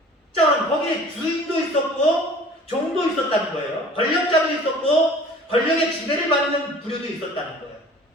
자, 그럼 거기에 주인도 있었고 종도 있었다는 거예요. 권력자도 있었고 권력의 지배를 받는 부류도 있었다는 거예요.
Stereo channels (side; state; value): both; normal; correlation 0.47